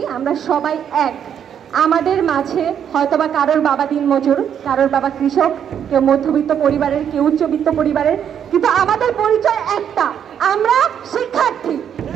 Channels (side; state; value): left; quieter; 8.7 dB